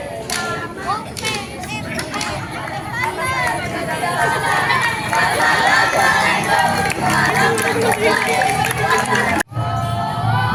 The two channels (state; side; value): identical; both; correlation 1.00